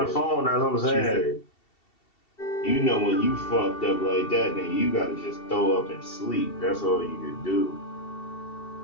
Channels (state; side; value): late; right; 2.7 ms